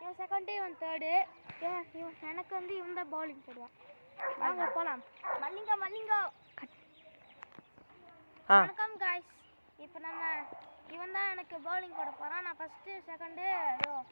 இவன் செகண்ட், இவன் தேர்டு. எனக்கு வந்து இவன் தான் பவுலிங் போடுவான். வாங்க போலாம். மல்லிங்கோ. வணக்கம் காய்ஸ். இப்போ இவன் தான் எனக்கு பவுலிங் போட போறான். நான் ஃபர்ஸ்ட் செகண்ட்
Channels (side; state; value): both; inverted; correlation -1.00